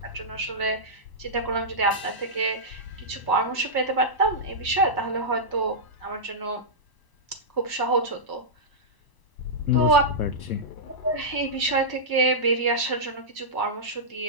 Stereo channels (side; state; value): right; late; 1.0 ms